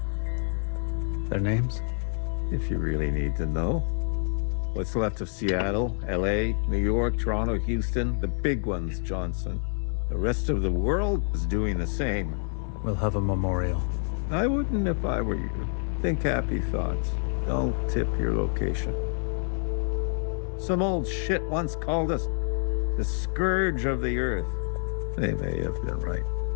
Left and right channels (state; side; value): silent; right; 60 dB below the other